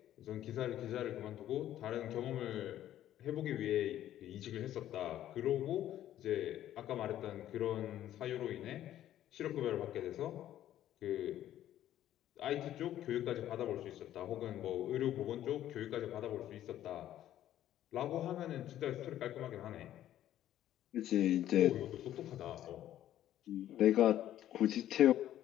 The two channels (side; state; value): right; quieter; 12.3 dB